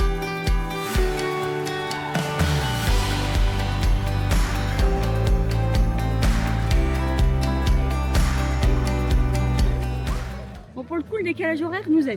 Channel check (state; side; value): identical; both; correlation 1.00